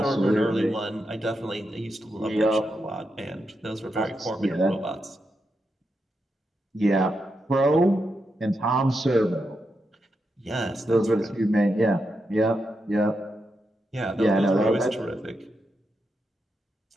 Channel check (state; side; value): normal; both; correlation 0.85